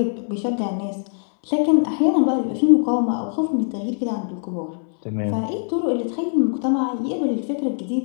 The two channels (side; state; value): right; silent; 63 dB below the other